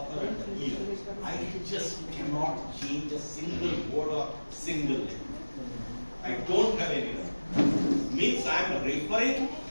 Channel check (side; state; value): both; inverted; correlation -1.00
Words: and the year, I just cannot change a single word or single letter. I don't have any. Means I am referring